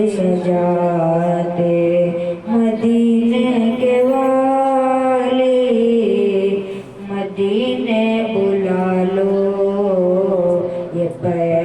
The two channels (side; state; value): both; identical; correlation 1.00